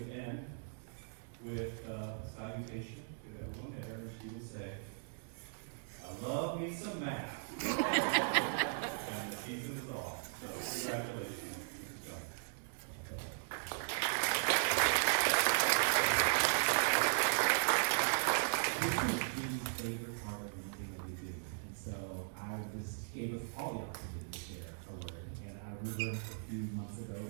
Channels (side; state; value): left; silent; digital silence